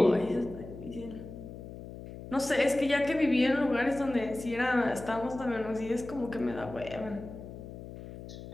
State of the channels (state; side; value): noise; left; hum, 12 dB below the sound